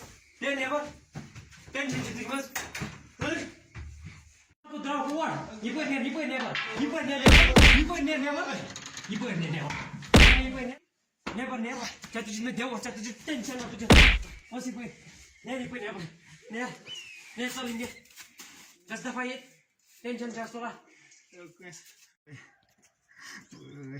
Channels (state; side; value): identical; both; correlation 1.00